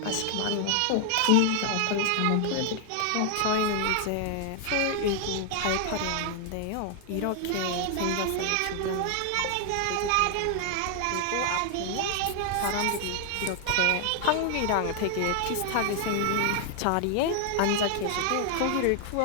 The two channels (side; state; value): both; different; correlation 0.00